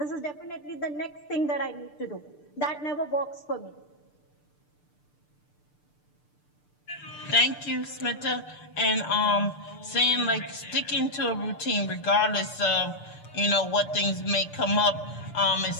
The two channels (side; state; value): right; late; 6.7 ms